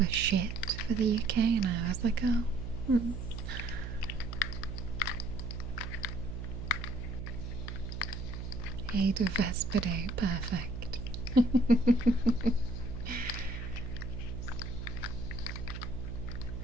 shit for the UK, and I was like, oh. Aid of Vespidae, perfect.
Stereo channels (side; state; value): right; noise; hum, 6 dB below the sound